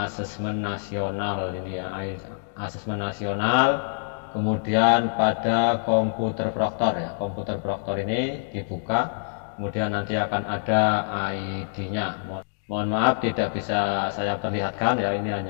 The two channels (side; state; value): right; silent; digital silence